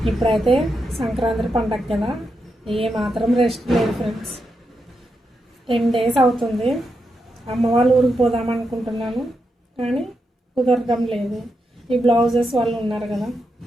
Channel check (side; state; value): both; normal; correlation 0.85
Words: ఇప్పుడైతే సంక్రాంతి పండగ కదా, ఏ మాత్రం రెస్ట్ లేదు ఫ్రెండ్స్. 10 days అవుతుంది. అమ్మ వాళ్ళ ఊరికి పోదాం అనుకుంటున్నాను, కానీ కుదరడం లేదు. ఈ బ్లౌజెస్ వాళ్ళు ఉన్నారు కదా,